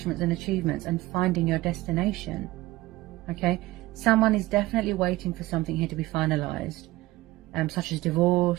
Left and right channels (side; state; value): left; quieter; 18.6 dB